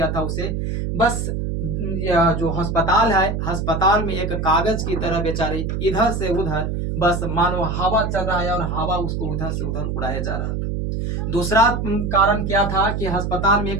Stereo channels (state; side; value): noise; right; hum, 2 dB below the sound